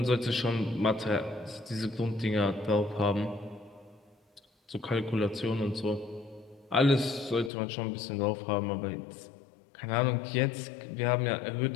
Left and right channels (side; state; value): right; drops out; at 7.5 s